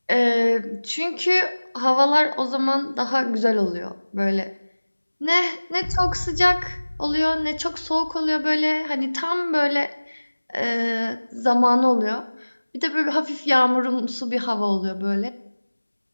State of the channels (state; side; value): inverted; both; correlation -1.00